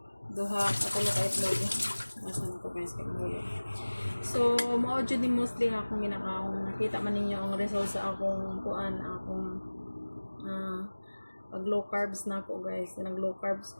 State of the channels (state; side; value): inverted; both; correlation -1.00